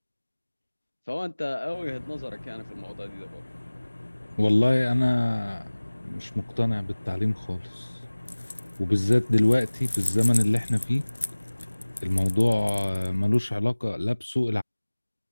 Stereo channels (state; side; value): inverted; both; correlation -1.00